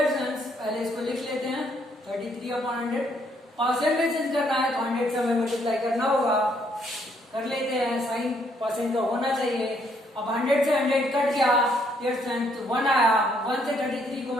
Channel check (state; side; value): normal; both; correlation 0.70